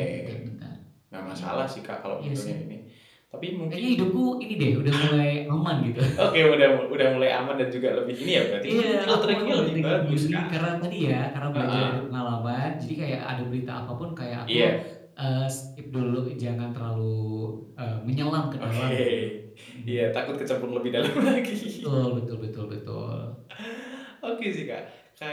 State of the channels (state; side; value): identical; both; correlation 1.00